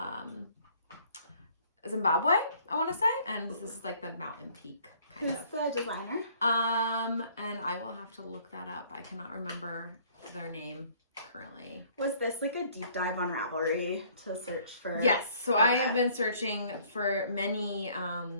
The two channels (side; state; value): both; inverted; correlation -0.59